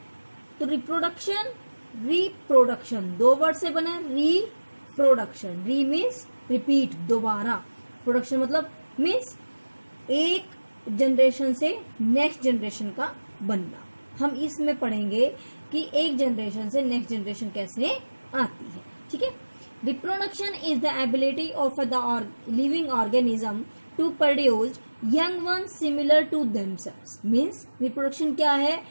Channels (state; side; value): inverted; both; correlation -1.00